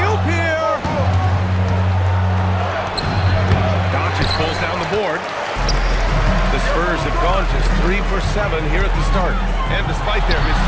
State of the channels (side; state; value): both; identical; correlation 1.00